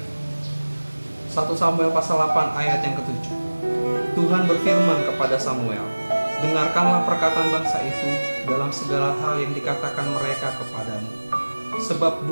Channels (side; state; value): both; inverted; correlation -1.00